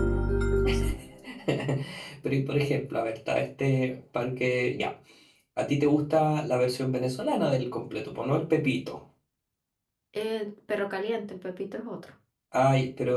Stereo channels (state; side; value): identical; both; correlation 1.00